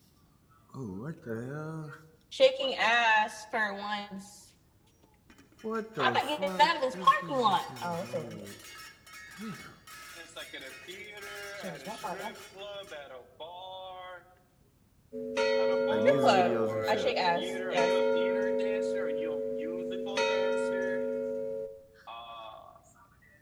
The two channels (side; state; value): both; identical; correlation 1.00